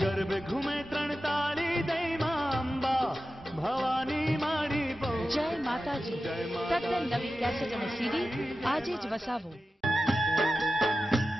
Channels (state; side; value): normal; both; correlation 0.93